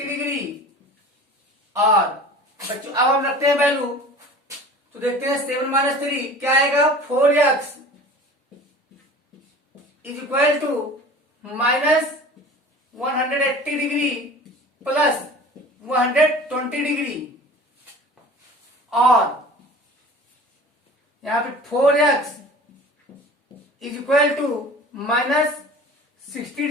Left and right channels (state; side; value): normal; both; correlation 0.41